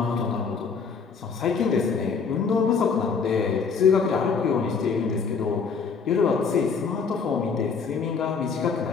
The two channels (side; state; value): right; quieter; 5.5 dB